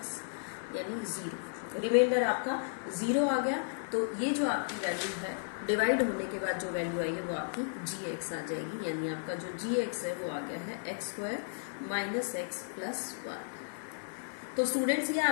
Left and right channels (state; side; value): silent; right; 55 dB below the other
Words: यानी 0, रिमाइंडर आपका 0 आ गया। तो ये जो आपकी वैल्यू है डिवाइड होने के बाद जो वैल्यू आई है वो आपकी gx आ जाएगी, यानी आपका जो gx है वो आ गया है x square minus x plus 1। तो स्टूडेंट्स ये